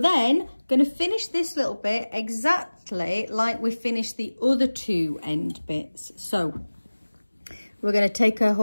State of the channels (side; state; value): both; inverted; correlation -1.00